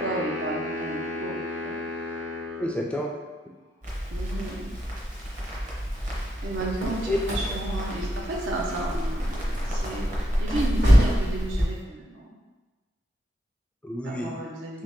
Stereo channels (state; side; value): normal; both; correlation 0.81